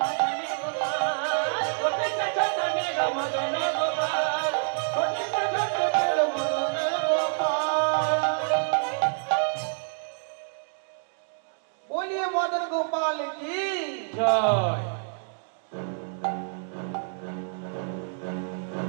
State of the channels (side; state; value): left; silent; digital silence